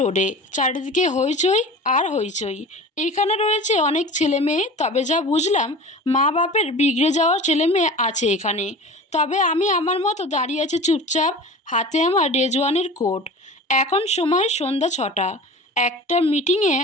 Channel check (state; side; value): normal; both; correlation 0.36